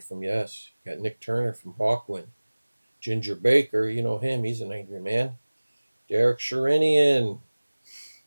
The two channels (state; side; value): inverted; both; correlation -1.00